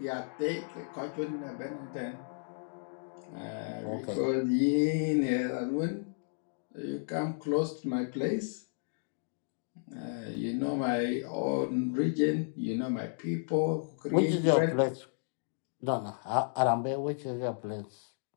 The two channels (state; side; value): silent; right; digital silence